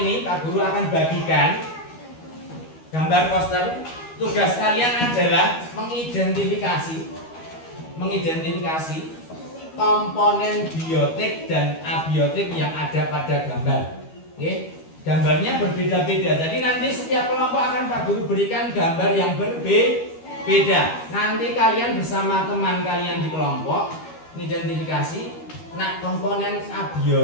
ini Pak Guru akan bagikan gambar poster. Tugas kalian adalah mengidentifikasi komponen biotik dan abiotik yang ada pada gambar. Oke? Gambarnya berbeda-beda. Jadi nanti setiap kelompok akan Pak Guru berikan gambar yang berbeda. Nanti kalian bersama teman kalian di kelompok mengidentifikasi, nah komponen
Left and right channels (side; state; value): right; late; 12 ms